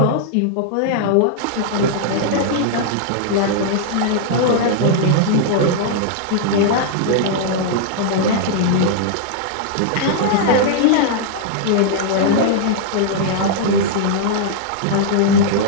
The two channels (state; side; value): different; both; correlation -0.01